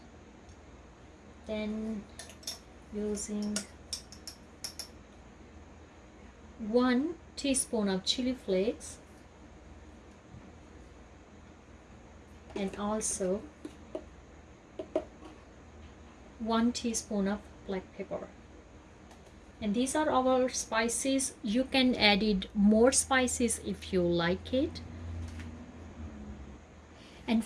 Then using 1 teaspoon of chili flakes, and also 1 teaspoon of black pepper. And these are our spices. You can add it more spices if you like it. And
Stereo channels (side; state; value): both; identical; correlation 1.00